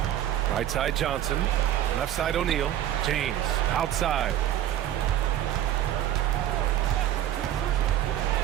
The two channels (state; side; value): quieter; left; 11.9 dB